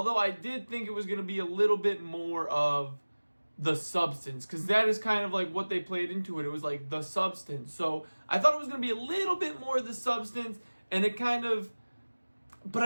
I did think it was going to be a little bit more of the substance, because that is kind of like what they played into it. It was like the substance. So I thought it was going to be a little bit more of the substance, and it kind of... But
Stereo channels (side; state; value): both; inverted; correlation -1.00